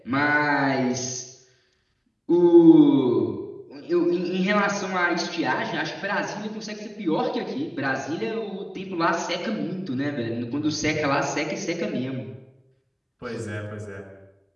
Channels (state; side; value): identical; both; correlation 1.00